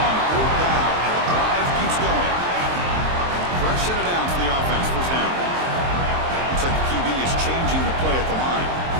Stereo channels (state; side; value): late; left; 23 ms